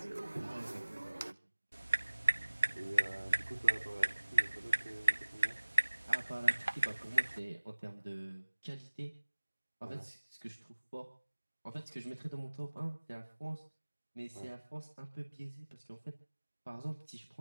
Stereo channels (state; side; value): inverted; both; correlation -1.00